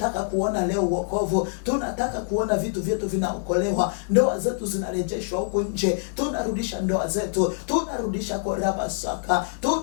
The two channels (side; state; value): right; silent; digital silence